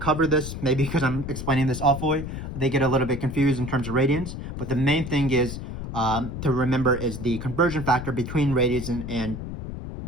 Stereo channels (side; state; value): left; noise; rumble, 7 dB below the sound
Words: this, maybe because I'm explaining this awfully, they get a little bit confused in terms of radians. But the main thing is to remember is the conversion factor between radians and